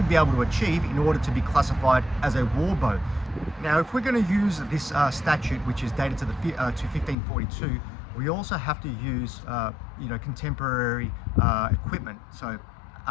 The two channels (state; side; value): drops out; right; at 7.2 s